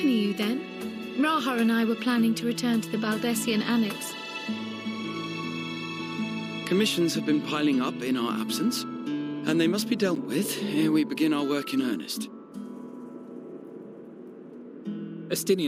you then? Raha and I were planning to return to the Baldessian Annex. Commissions have been piling up in our absence, and they must be dealt with ere we begin our work in earnest.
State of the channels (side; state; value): both; identical; correlation 1.00